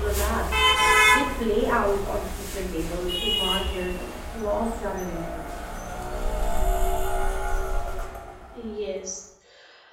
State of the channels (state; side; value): identical; both; correlation 1.00